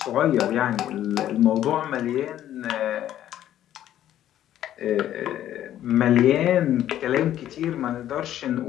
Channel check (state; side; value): quieter; right; 11.9 dB